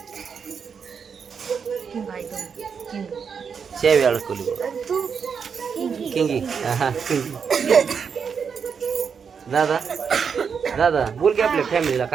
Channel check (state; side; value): quieter; left; 6.4 dB